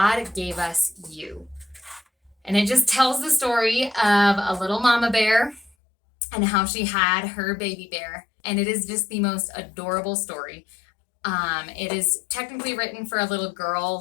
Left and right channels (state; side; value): drops out; right; at 5.8 s